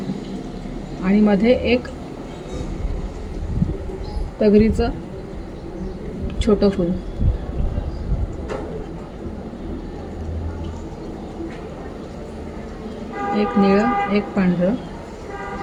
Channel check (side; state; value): both; identical; correlation 1.00